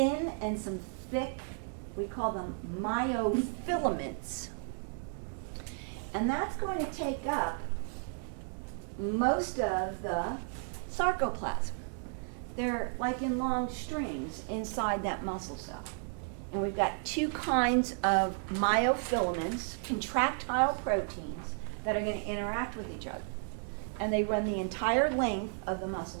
and some thick, we call them myofilaments. And that's going to take up most of the sarcoplasm. They're like in long strings inside that muscle cell. And we've got two kinds of myofilaments, contractile proteins, that are going to interact with each other. And they run the entire length of the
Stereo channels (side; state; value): left; silent; 55 dB below the other